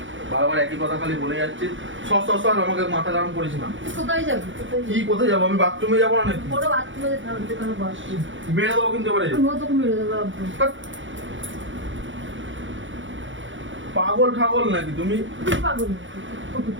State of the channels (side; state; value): left; late; 0.56 ms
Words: বারবার একই কথা খালি বলে যাচ্ছিস। সর আমাকে মাথা গরম করিস না। তুই কোথায় যাবি? কি কোথায় যাবো? আমি বাথরুমে যাবো না নাকি? কোনো বাথরুমে থাকতে কোনো বস। মেরে দেবো কিন্তু এবারে। আমিও তোকে মেরে দেবো একদম। পাগল ঠাগল নাকি তুমি? তুই পাগল